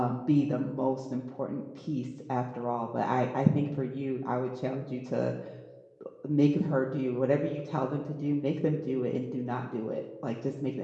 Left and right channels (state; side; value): identical; both; correlation 1.00